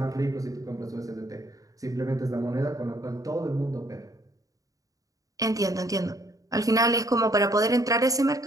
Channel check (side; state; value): left; late; 0.17 ms